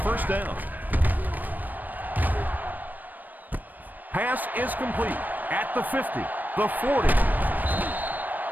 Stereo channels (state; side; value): late; left; 0.087 ms